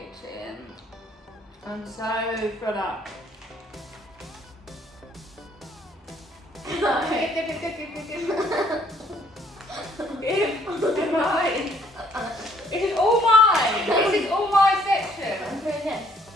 I'm so full up. Give. Mine. It is all mine. This is all my section. I'm doing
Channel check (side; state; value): both; normal; correlation 0.63